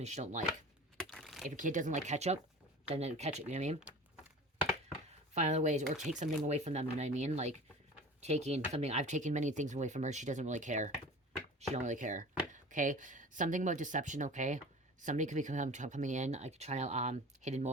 she don't like. If a kid doesn't like ketchup, then ketchup, you know what I mean? Find other ways, or take something away from them, you know what I mean? Like, taking something, I've taken many things away from her, she doesn't really care. She don't really care. Okay? Something about deception, okay? Somebody could be coming in, like, trying to, hidden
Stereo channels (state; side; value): normal; both; correlation 0.39